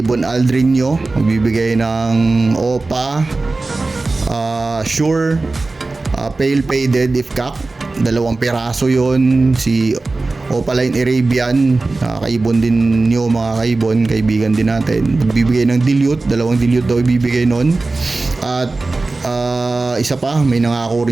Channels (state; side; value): quieter; left; 3.4 dB